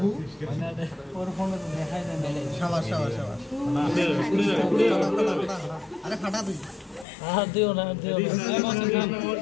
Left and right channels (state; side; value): drops out; right; at 7.1 s